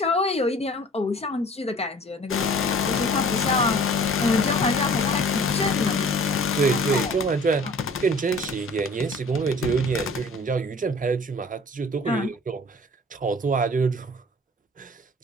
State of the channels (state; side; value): normal; both; correlation 0.48